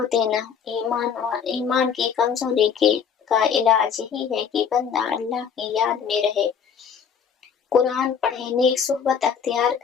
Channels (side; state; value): right; quieter; 7.1 dB